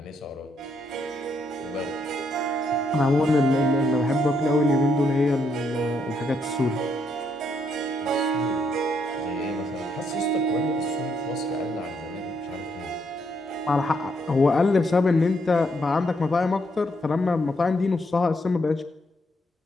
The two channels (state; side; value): normal; both; correlation 0.75